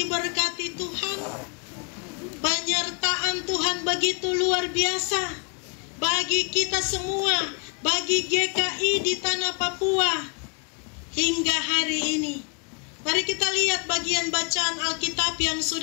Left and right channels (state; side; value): quieter; right; 35.9 dB